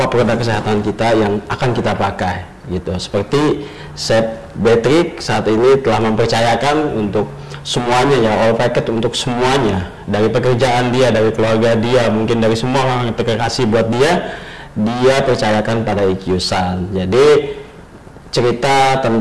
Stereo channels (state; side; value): identical; both; correlation 1.00